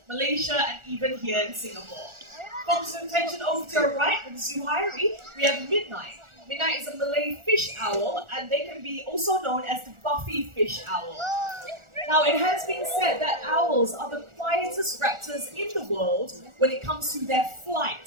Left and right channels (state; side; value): late; left; 1.4 ms